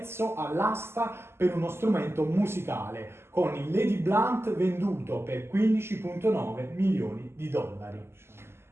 all'asta per uno strumento musicale, con il Lady Blunt venduto per 15,9 milioni di dollari?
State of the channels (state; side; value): late; left; 0.12 ms